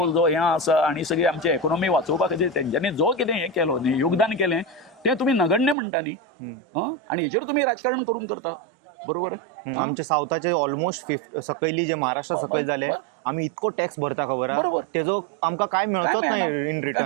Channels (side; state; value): left; drops out; at 5.8 s